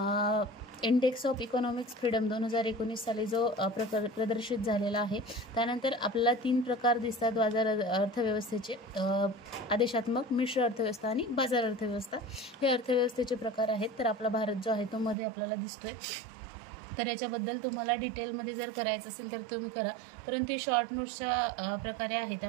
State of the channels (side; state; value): left; drops out; at 15.2 s